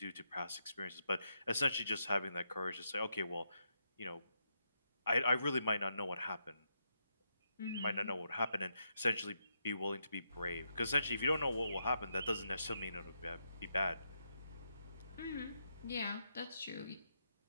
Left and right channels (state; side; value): inverted; both; correlation -0.82